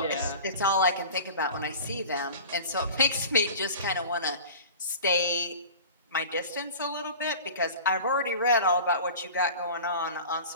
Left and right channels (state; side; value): inverted; both; correlation -0.36